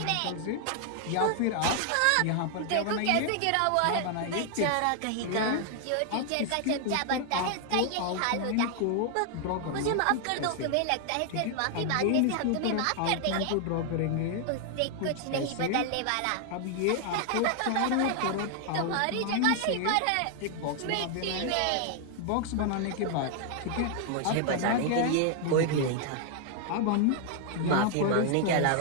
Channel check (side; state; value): both; different; correlation 0.00